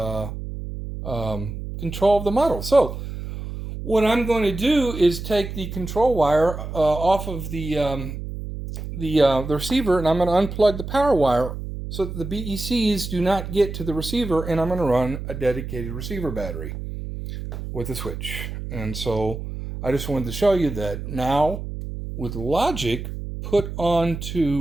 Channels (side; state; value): right; noise; hum, 8 dB below the sound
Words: control of the model. So what I'm going to do is take the control wire off of the receiver, and I'm going to unplug the power wire so that the BECs do not get to the receiver, and I'm going to run a dedicated receiver battery with a switch. And so I just wanted to show you that now with logic put